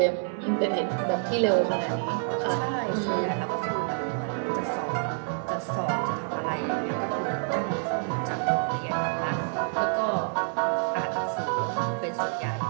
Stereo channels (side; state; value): left; silent; 57 dB below the other